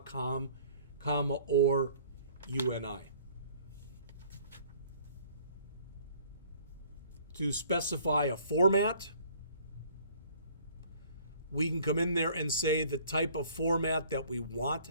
comma, or UNI. To specify a format, we can come in there and say the type of format that we want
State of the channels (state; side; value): inverted; both; correlation -0.55